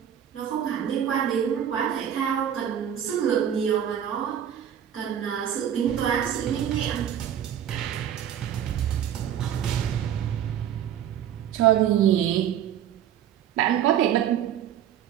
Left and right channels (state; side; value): quieter; left; 9.8 dB